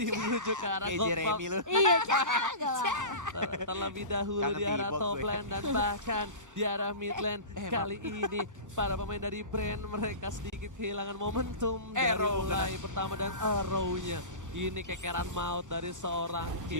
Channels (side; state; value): left; late; 1.0 ms